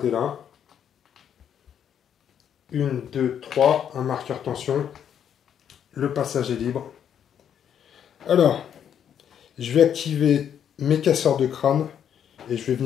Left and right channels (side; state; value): right; quieter; 8.9 dB